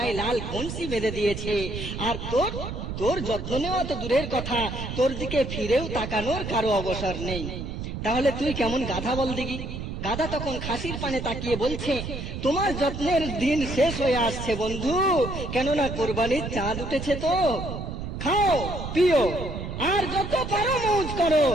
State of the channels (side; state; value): right; noise; rumble, 6 dB below the sound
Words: লাল বংশী বেঁধে দিয়েছে, আর তোর যত্ন নেওয়া তো দূরের কথা, তোর দিকে ফিরেও তাকানোর কারো অবসর নেই। তাহলে তুই কেমন গাধা বল দেখি। গাধা তখন খাসির পানে তাকিয়ে বলছে, তোমার যত্নের দিন শেষ হয়ে আসছে বন্ধু, কেননা কোরবানির চাঁদ উঠেছে, তো খাও পিও আর যত পারো মৌজ করো,